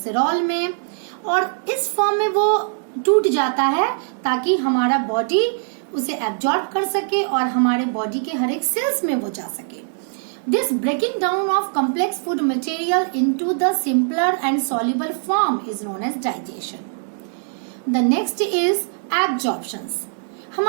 में, और इस फॉर्म में वो टूट जाता है ताकि हमारा बॉडी उसे एब्जॉर्ब कर सके और हमारे बॉडी के हर एक सेल्स में वो जा सके. This breaking down of complex food material into the simpler and soluble form is known as digestion. The next is absorptions.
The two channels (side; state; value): left; silent; digital silence